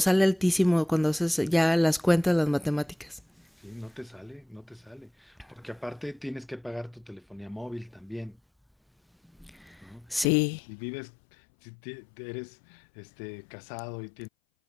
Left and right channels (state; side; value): drops out; right; at 10.2 s